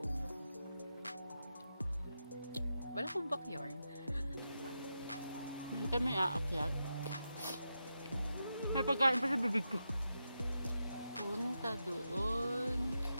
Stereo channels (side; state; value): both; inverted; correlation -0.88